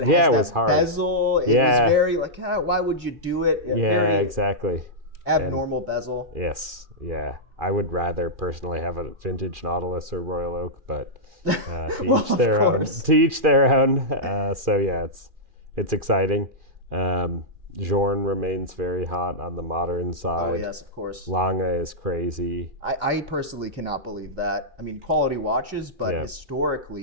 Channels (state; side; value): late; left; 2.4 ms